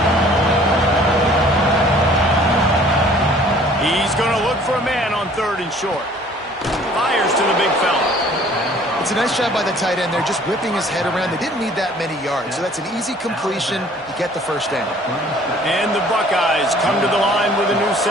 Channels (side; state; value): both; normal; correlation 0.54